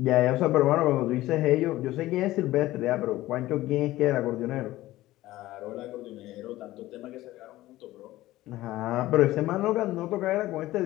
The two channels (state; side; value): quieter; right; 16.5 dB